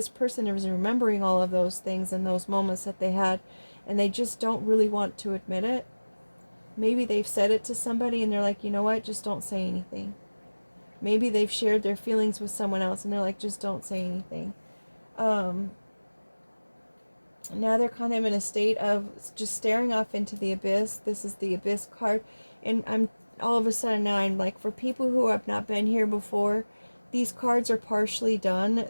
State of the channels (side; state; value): both; inverted; correlation -1.00